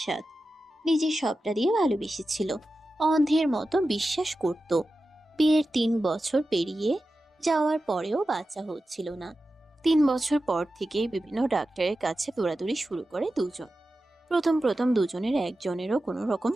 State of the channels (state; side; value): normal; both; correlation 0.93